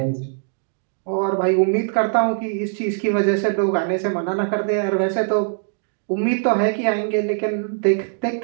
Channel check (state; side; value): silent; left; digital silence